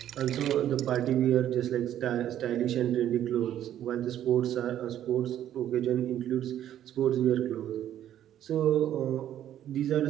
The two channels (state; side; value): quieter; left; 11.3 dB